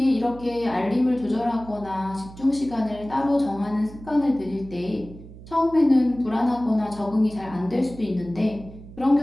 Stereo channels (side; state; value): right; noise; hum, 17 dB below the sound